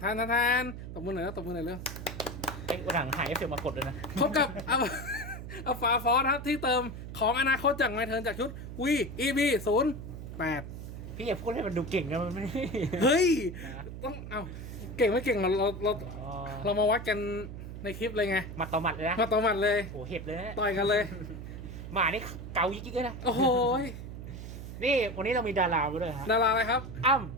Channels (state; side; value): noise; right; hum, 9 dB below the sound